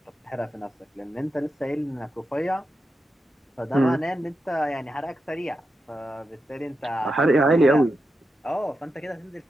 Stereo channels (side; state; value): both; normal; correlation 0.88